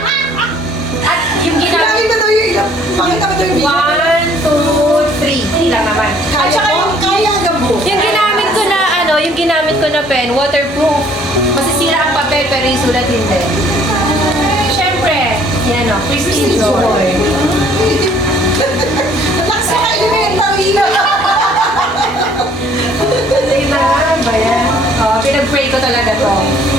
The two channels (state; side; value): normal; both; correlation 0.59